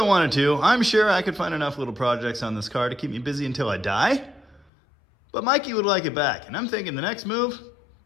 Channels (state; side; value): drops out; right; at 4.7 s